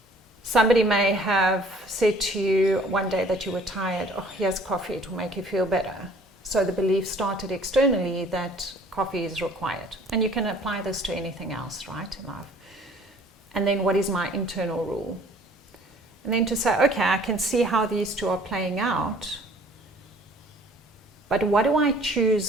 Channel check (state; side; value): normal; both; correlation 0.54